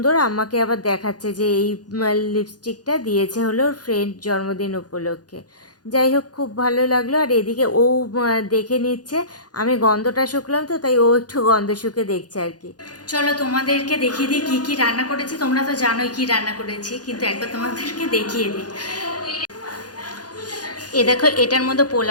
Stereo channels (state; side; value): late; right; 0.69 ms